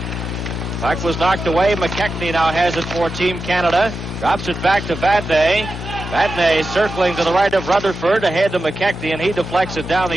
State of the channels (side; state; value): both; normal; correlation 0.91